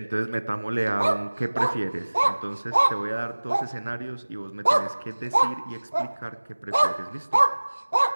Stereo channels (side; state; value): both; inverted; correlation -1.00